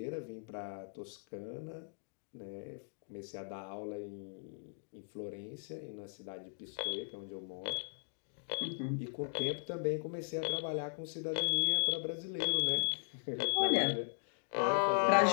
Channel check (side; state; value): right; silent; digital silence